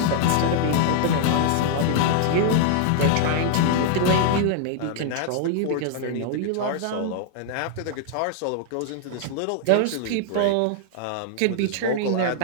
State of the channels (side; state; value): both; different; correlation -0.01